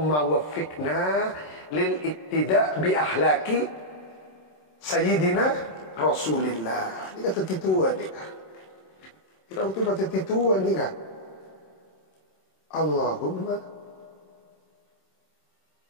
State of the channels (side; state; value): right; late; 27 ms